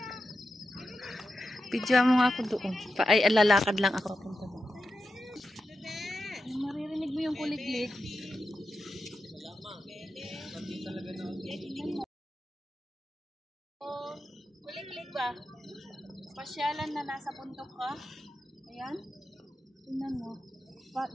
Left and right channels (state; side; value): normal; both; correlation 0.89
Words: Pidya mo nga ako doon. Ay, lalakad lang ako. Maririnig mo yung kuliglig. Kuliglig ba? Pasyalan na nasa bundok ka. Ayan. Tingnan mo.